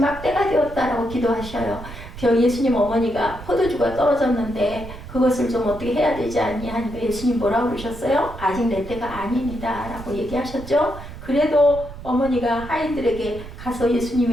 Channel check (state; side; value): noise; right; rumble, 13 dB below the sound